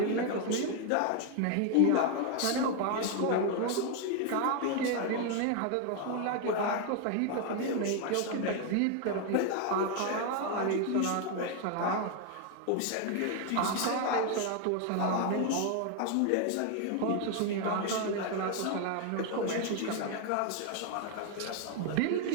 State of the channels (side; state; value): both; different; correlation 0.00